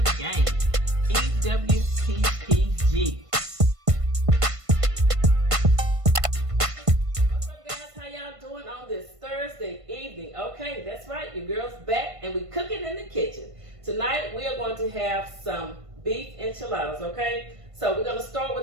gang. EWPPG. What's up, guys? How y'all doing on this Thursday evening? Okay, that's right. Your girl's back and we cooking in the kitchen. Tonight, we are going to have some beef enchiladas, okay? So we're going to start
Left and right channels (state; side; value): late; left; 1.5 ms